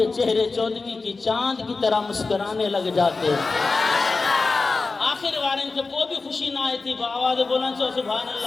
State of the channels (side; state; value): right; quieter; 3.9 dB